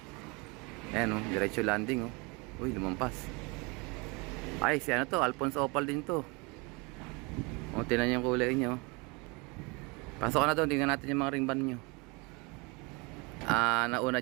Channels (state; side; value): quieter; left; 28.5 dB